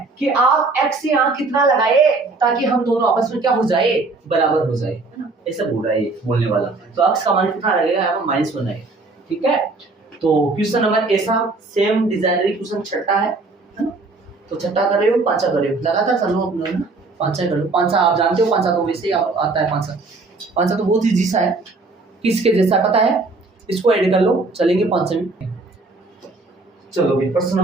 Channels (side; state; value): left; quieter; 3.6 dB